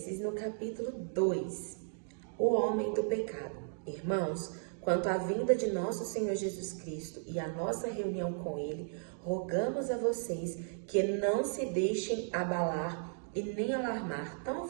no capítulo 2, o homem do pecado. Irmãos, quanto à vinda de nosso Senhor Jesus Cristo e a nossa reunião com Ele, rogamos a vocês que não se deixem abalar e nem alarmar tão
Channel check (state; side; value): silent; left; digital silence